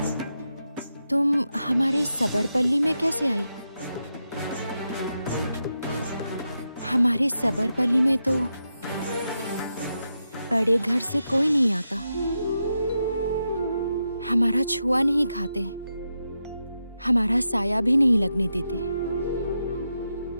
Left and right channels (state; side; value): inverted; both; correlation -0.87